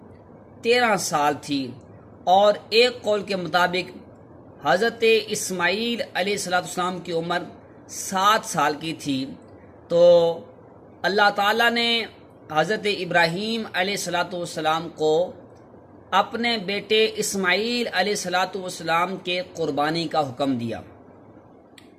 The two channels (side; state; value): both; identical; correlation 1.00